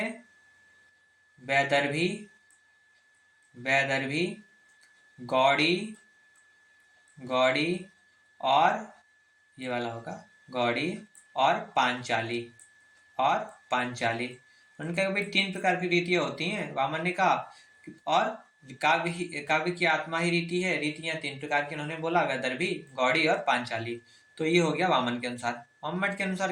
वैदर्भी, वैदर्भी, गौड़ी, गौड़ी और ये वाला होगा गौड़ी और पांचाली, और पांचाली। उन्होंने कहा कि भाई 3 प्रकार की रीतियां होती हैं। वामन ने कहा और काव्य की आत्मा ही रीति है। रीतियां 3 प्रकार की उन्होंने बोला, वैदर्भी, गौड़ी और पांचाली। तो ये हो गया वामन के अनुसार। मम्मट के अनुसार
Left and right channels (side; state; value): both; identical; correlation 1.00